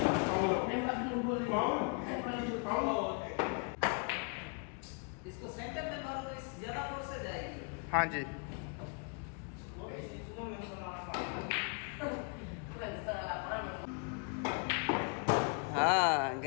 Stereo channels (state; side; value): quieter; right; 38.0 dB